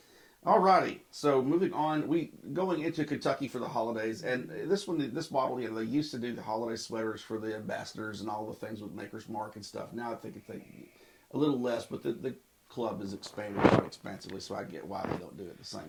alrighty. So moving on, we going into Kentucky for the holidays, and this bottle, they used to do the holiday sweaters for the ambassadors and all the things with Maker's Mark and stuff. Now I think it's a little less, but the club is expanded quite expansively, so I get why they don't do it the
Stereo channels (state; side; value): identical; both; correlation 1.00